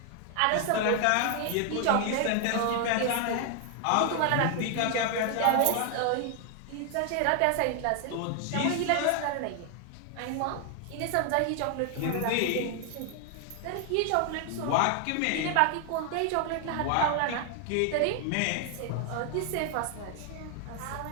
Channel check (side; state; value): both; different; correlation 0.00